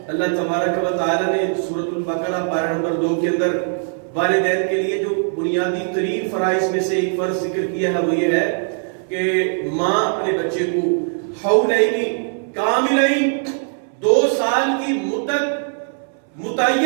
اللہ تبارک و تعالی نے سورۃ البقرہ پارہ نمبر 2 کے اندر والدین کے لیے جو بنیادی ترین فرائض میں سے ایک فرض ذکر کیا ہے وہ یہ ہے کہ ماں اپنے بچے کو حولین کاملین 2 سال کی مدت،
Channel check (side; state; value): left; silent; 66 dB below the other